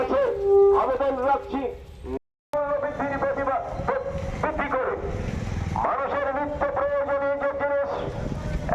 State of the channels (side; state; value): both; identical; correlation 1.00